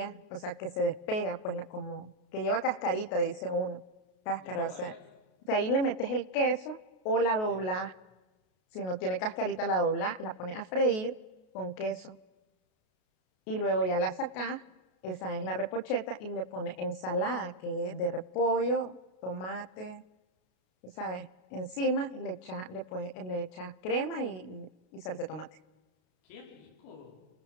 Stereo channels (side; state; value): right; late; 33 ms